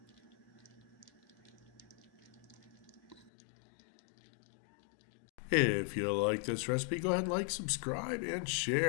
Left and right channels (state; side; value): drops out; right; at 3.3 s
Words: If you like this recipe, go ahead and like, subscribe, and